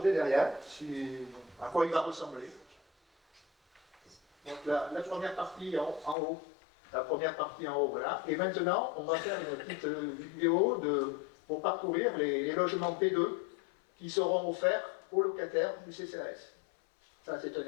derrière, à quoi il va ressembler. Donc la première partie en haut. La première partie en haut, voilà. Et maintenant, on va faire une petite vidéo pour parcourir les logements P2 qui seront offerts aux locataires du CCAS. Ça, c'est un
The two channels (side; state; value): right; drops out; at 6.2 s